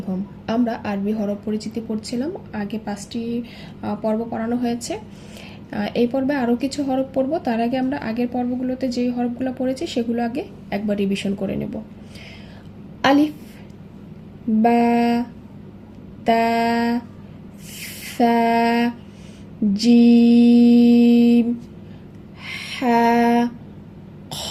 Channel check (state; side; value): identical; both; correlation 1.00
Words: home. আমরা আরবি হরফ পরিচিতি পড়ছিলাম। আগে 5টি পর্ব পড়ানো হয়েছে। এই পর্বে আরও কিছু হরফ পড়ব। তার আগে আমরা আগের পর্বগুলোতে যেই হরফগুলো পড়েছি সেগুলো আগে একবার রিভিশন করে নেব। আলিফ, বা, তা, সা, জিম, হা, খ,